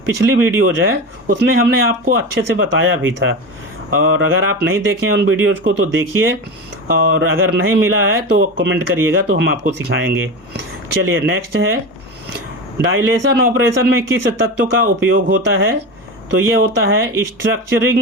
पिछली वीडियोज है उसमें हमने आपको अच्छे से बताया भी था, और अगर आप नहीं देखें उन वीडियोज़ को तो देखिए, और अगर नहीं मिला है तो कमेंट करिएगा, तो हम आपको सिखाएंगे। चलिए नेक्स्ट है, डायलेशन ऑपरेशन में किस तत्व का उपयोग होता है? तो ये होता है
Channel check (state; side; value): normal; both; correlation 0.24